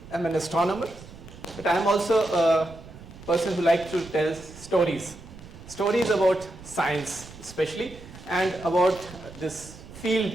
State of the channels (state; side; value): noise; right; rumble, 17 dB below the sound